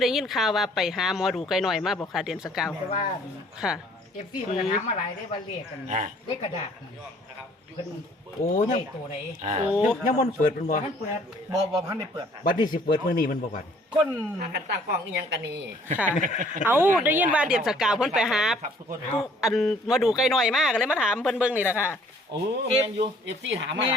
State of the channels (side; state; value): both; normal; correlation 0.58